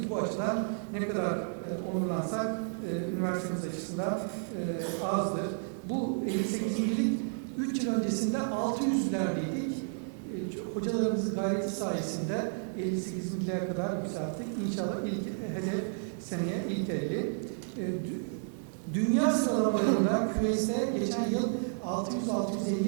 Bu açıdan ne kadar onurlansak üniversitemiz açısından azdır. Bu 58.lik 3 yıl öncesinde 600'lerdeydik. Hocalarımızın gayreti sayesinde 58.liğe kadar yükselttik. İnşallah ilk hedef seneye ilk 50. Dünya sıralamalarında QS'te geçen yıl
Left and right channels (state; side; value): silent; left; digital silence